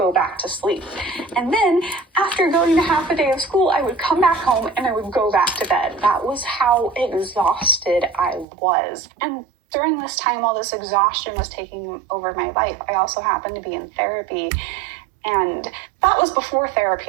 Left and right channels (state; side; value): drops out; left; at 8.5 s